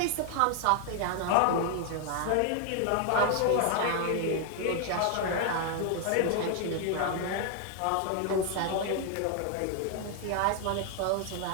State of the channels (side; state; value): both; different; correlation 0.00